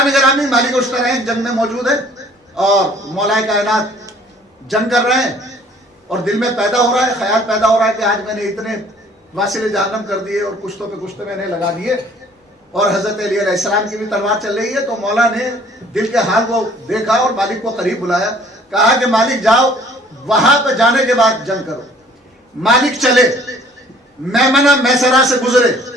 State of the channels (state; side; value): normal; both; correlation 0.55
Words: گرامی, مالک اشتر ہیں, جنگ میں موجود ہے اور مولا کائنات جنگ کر رہے ہیں اور دل میں پیدا ہو رہا ہے, خیال پیدا ہو رہا ہے کہ آج میں نے اتنے واصل جہنم کر دیے اور کشتوں پہ کشتے میں نے لگا دیے, اور حضرت علی علیہ السلام کی بھی تلوار چل رہی ہے. تو مولا نے دل کے حال کو دیکھا اور مالک کو قریب بلایا, کہا کہ مالک جاؤ, وہاں پہ جانے کے بعد جنگ کرو. مالک چلے, میمنہ میسرہ سے گزرے,